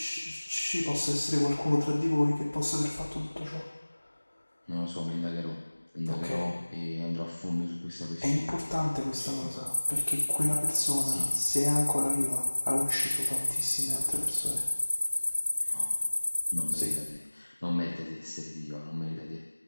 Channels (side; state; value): both; inverted; correlation -1.00